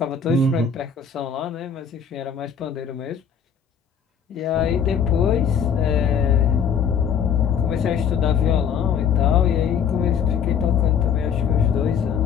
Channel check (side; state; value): right; quieter; 7.4 dB